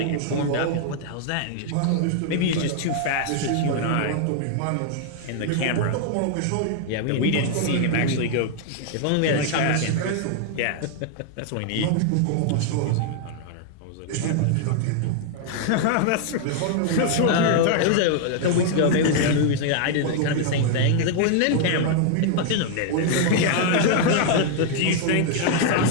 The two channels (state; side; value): different; both; correlation 0.00